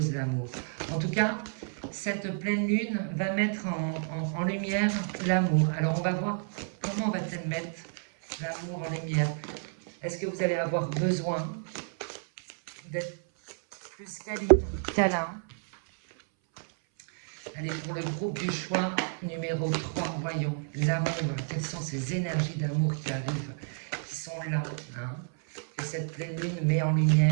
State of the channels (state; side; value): silent; left; 58 dB below the other